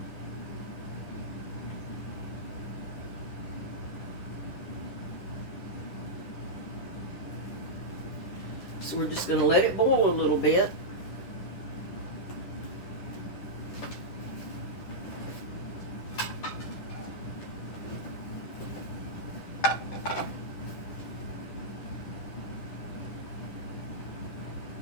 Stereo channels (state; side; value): late; right; 10 ms